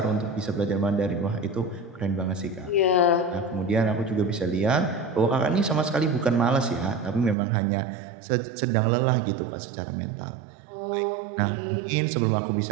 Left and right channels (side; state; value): left; drops out; at 7.4 s